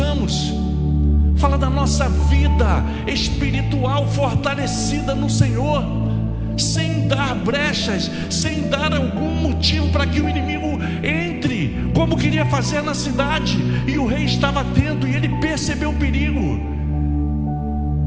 Fala da nossa vida espiritual fortalecida no Senhor, sem dar brechas, sem dar algum motivo para que o inimigo entre, como queria fazer na cidade. E o rei estava atento e ele percebeu o perigo.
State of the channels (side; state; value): both; identical; correlation 1.00